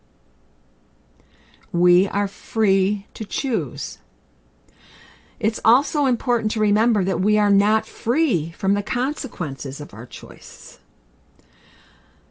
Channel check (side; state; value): both; identical; correlation 1.00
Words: We are free to choose. It's also important to remember that we are not free from the consequences of our choices.